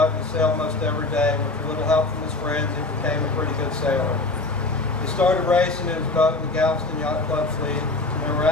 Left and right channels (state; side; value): quieter; right; 3.1 dB